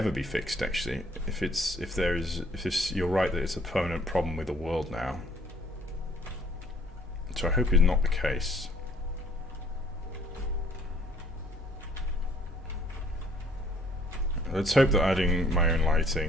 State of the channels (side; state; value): both; normal; correlation 0.60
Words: be fixed. Actually, if you're right that it's a permanent problem with the world now. So I hope it's not the case. Let's hope that adding my own